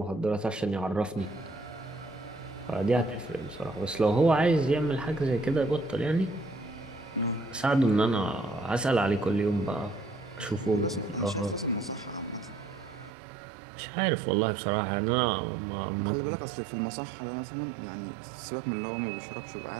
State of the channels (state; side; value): drops out; left; at 13.1 s